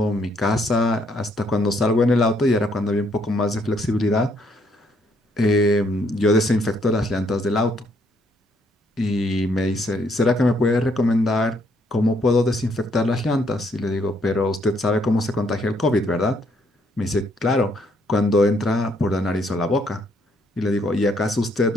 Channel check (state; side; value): normal; both; correlation 0.71